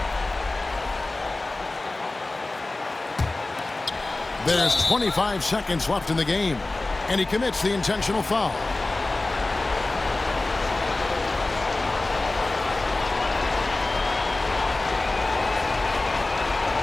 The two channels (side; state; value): right; quieter; 3.1 dB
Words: There's 25 seconds left in the game. And he commits the intentional foul.